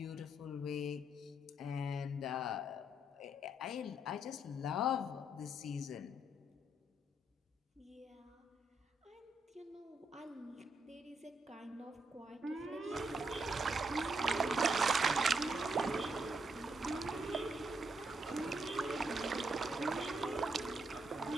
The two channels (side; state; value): both; normal; correlation 0.77